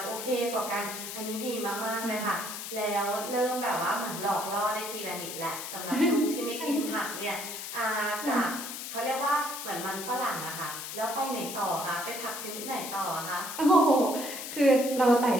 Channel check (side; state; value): left; noise; hiss, 7 dB below the sound